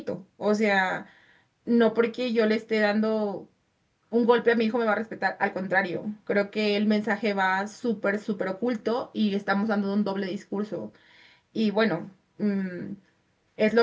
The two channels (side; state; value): both; identical; correlation 1.00